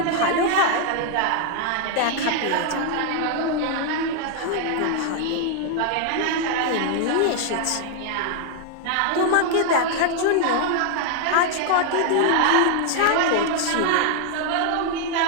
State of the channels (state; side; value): different; both; correlation 0.00